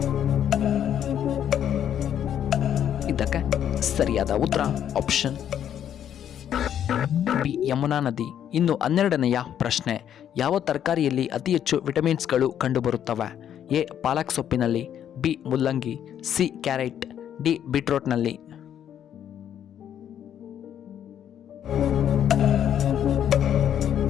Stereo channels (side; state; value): right; quieter; 9.8 dB